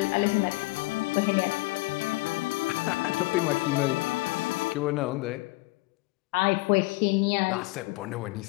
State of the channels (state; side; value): quieter; right; 23.2 dB